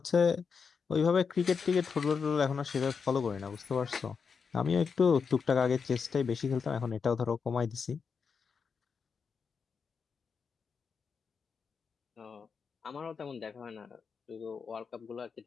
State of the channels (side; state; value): right; quieter; 5.8 dB